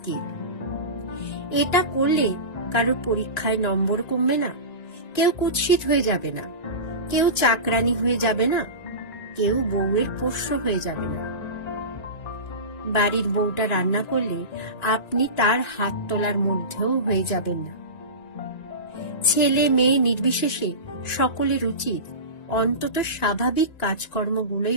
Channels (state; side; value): late; right; 1.9 ms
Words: এটা করলে কারো পরীক্ষায় নম্বর কমবে না, কেউ কুৎসিত হয়ে যাবে না, কেউ চাকরানি হয়ে যাবে না, কেউ বউয়ের পোষ্য হয়ে যাবে না। বাড়ির বউটা রান্না করলে আপনি তার হাত তোলার মধ্যেও হয়ে যাবেন না। ছেলে মেয়ে নির্বিশেষে সকলের উচিত অন্তত স্বাভাবিক